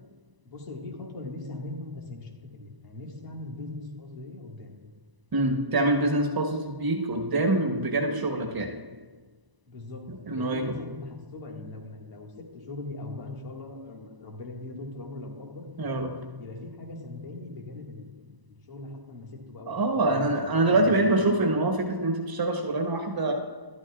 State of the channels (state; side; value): late; left; 1.0 ms